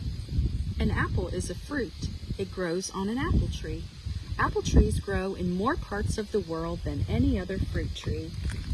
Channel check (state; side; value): identical; both; correlation 1.00